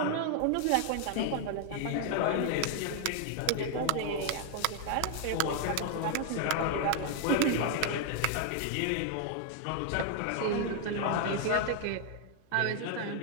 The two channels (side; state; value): both; different; correlation 0.00